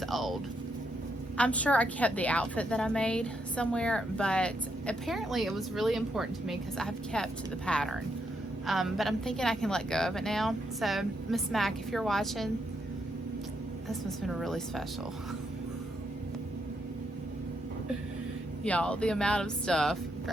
old. I'm sure I kept the outfit that I made somewhere, but apparently it was really important to me because I've kept the pattern. But I'm thinking I can let go of it now. So, Miss Mac, if you're watching, this must have been really special. Y'all, the amount of stuff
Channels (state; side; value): normal; both; correlation 0.78